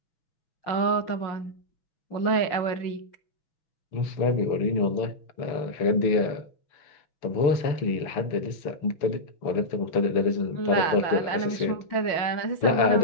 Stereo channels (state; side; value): late; right; 6.2 ms